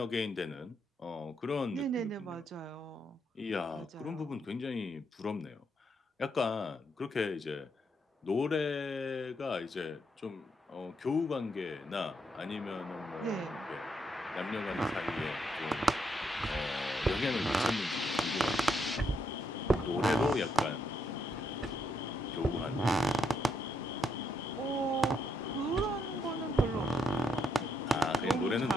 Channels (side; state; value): both; normal; correlation 0.77